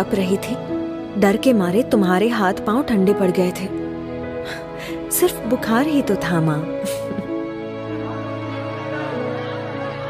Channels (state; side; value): identical; both; correlation 1.00